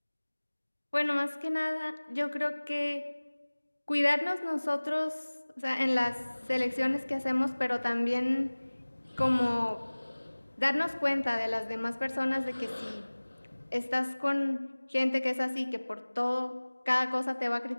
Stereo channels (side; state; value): both; inverted; correlation -1.00